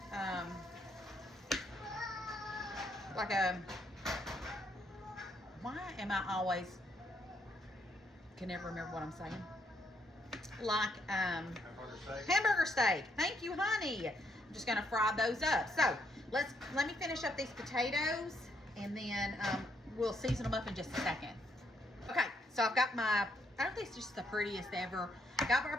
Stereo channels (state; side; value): normal; both; correlation 0.74